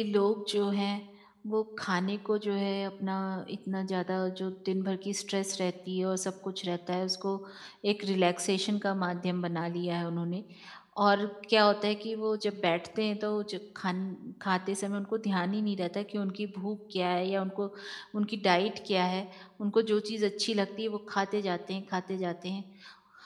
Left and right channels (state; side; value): identical; both; correlation 1.00